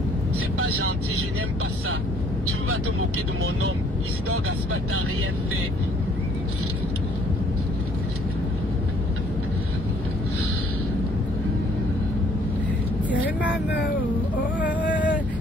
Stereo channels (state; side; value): normal; both; correlation 0.61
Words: C'est pas gentil, je n'aime pas ça. Tu vas te moquer de mon homme. Isidore Gaspard, t'as rien fait. Tiens maman, oh, oh,